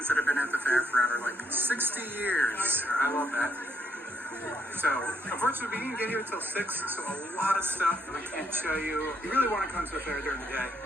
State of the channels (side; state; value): both; normal; correlation 0.73